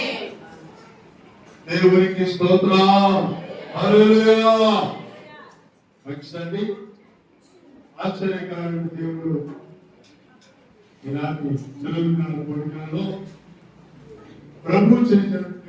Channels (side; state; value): both; identical; correlation 1.00